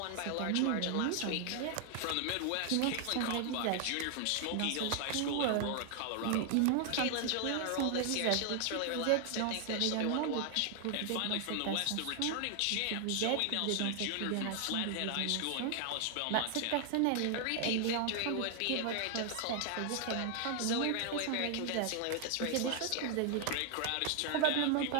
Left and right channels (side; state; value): both; different; correlation 0.00